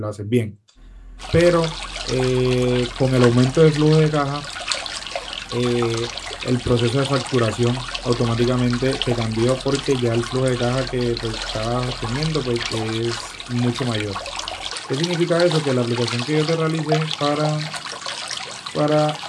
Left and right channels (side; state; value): both; identical; correlation 1.00